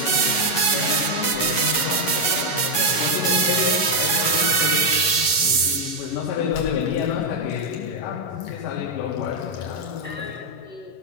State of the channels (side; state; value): right; late; 11 ms